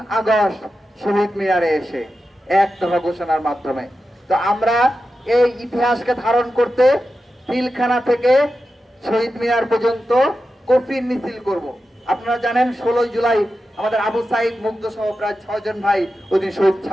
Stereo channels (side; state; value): both; normal; correlation 0.91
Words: আগস্ট শহীদ মিনারে এসে এক দফা ঘোষণার মাধ্যমে। তো আমরা এই ইতিহাসকে ধারণ করতে পিলখানা থেকে শহীদ মিনার পর্যন্ত কফিন মিছিল করব। আপনারা জানেন 16 জুলাই আমাদের আবু সাইদ মুগ্ধ সহ প্রায় 6 জন ভাই ওই দিন শহীদ